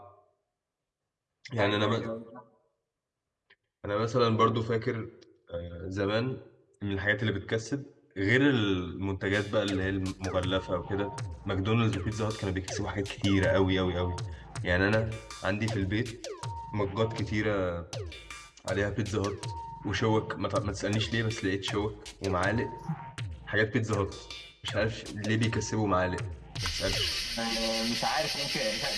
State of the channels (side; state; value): both; identical; correlation 1.00